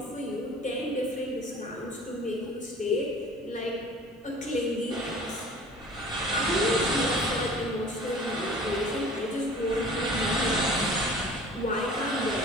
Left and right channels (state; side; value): normal; both; correlation 0.45